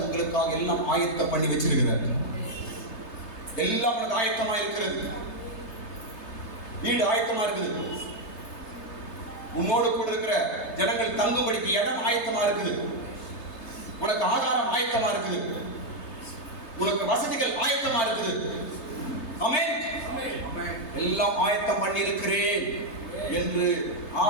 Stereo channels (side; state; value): right; late; 3.3 ms